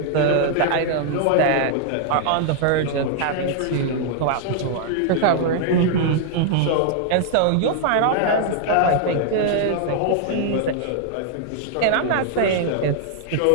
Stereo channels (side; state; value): both; different; correlation 0.00